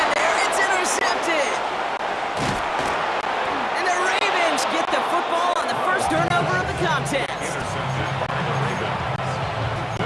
there. It's intercepted. And the Ravens get the football on the first turnover of the contest.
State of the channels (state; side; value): identical; both; correlation 1.00